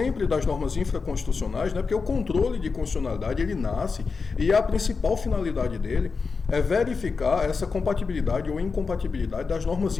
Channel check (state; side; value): quieter; right; 4.8 dB